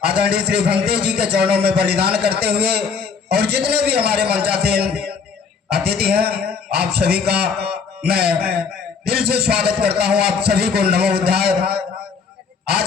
आदरणीय श्री भंते जी के चरणों में बलिदान करते हुए और जितने भी हमारे मंचासीन अतिथि हैं आप सभी का मैं दिल से स्वागत करता हूं। आप सभी को नमो बुद्धाय।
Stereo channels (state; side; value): quieter; right; 5.6 dB